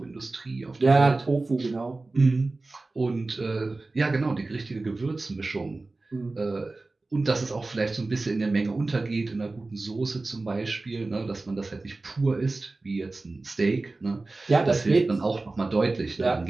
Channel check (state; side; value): quieter; left; 3.3 dB